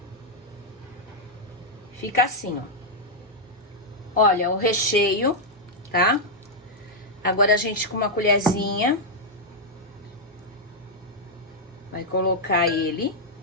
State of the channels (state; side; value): normal; both; correlation -0.04